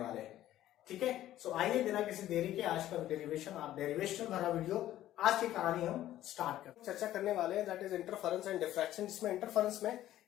हैं। ठीक है, सो आइए बिना किसी देरी के आज का डेरिवेशन भरा वीडियो, आज की कहानी हम स्टार्ट करते हैं। चर्चा करने वाले हैं that is interference and diffraction, जिसमें इंटरफेरेंस में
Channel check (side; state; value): right; quieter; 13.4 dB